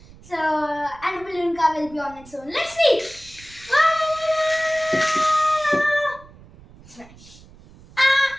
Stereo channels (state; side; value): noise; right; rumble, 22 dB below the sound